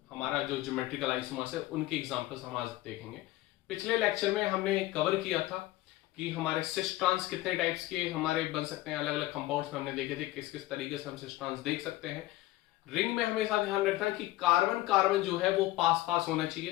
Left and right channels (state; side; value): quieter; right; 17.1 dB